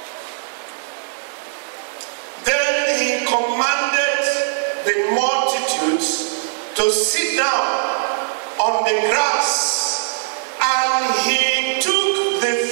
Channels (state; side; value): silent; left; 56 dB below the other